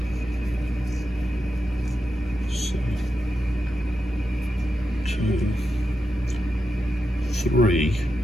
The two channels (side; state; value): both; normal; correlation 0.88